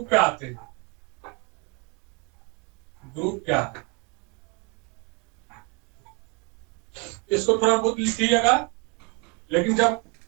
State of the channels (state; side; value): quieter; left; 32.1 dB